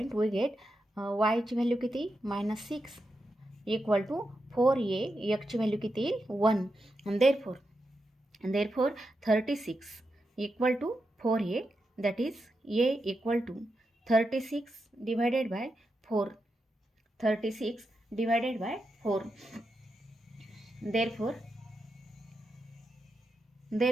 We get वायची व्हॅल्यू किती, -6 इक्वल टू 4a, एक्सची व्हॅल्यू किती, 1. Therefore 36 equal to 4a, that is a equal to 36 divided by 4.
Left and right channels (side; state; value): both; normal; correlation 0.87